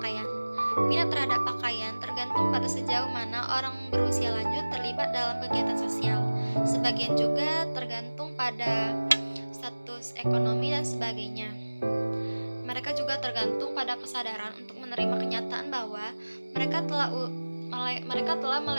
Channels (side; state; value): both; inverted; correlation -1.00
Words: Minat terhadap pakaian tergantung pada sejauh mana orang berusia lanjut terlibat dalam kegiatan sosial. Sebagian juga tergantung pada status ekonomi dan sebagainya. Mereka juga tergantung tergantung pada kesadaran untuk menerima kenyataan bahwa mereka telah